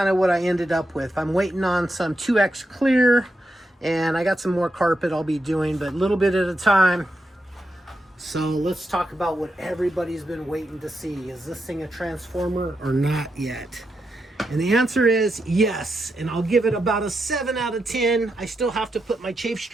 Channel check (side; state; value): both; normal; correlation 0.85